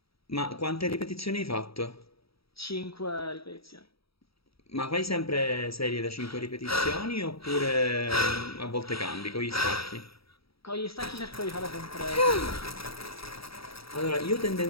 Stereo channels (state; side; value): late; right; 0.76 ms